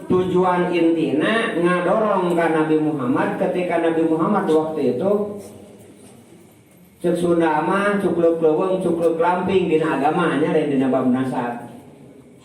Tujuan intina ngadorong ka Nabi Muhammad ketika Nabi Muhammad waktu itu cek Sunda mah cukluk leuweung cukluk lamping dina agamanya dan dina bab nasab.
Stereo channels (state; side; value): identical; both; correlation 1.00